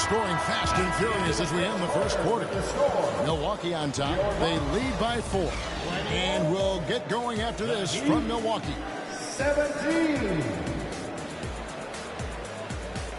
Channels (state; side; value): identical; both; correlation 1.00